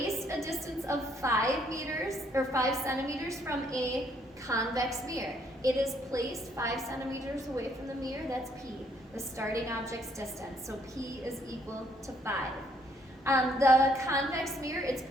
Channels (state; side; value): normal; both; correlation 0.68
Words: a distance of 5 meters or 5 centimeters from a convex mirror. It is placed 5 centimeters away from the mirror. That's P, the starting object's distance. So P is equal to 5. The convex mirror it's